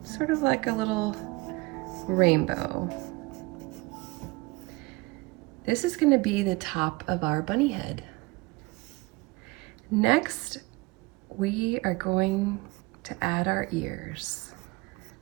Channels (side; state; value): left; quieter; 23.4 dB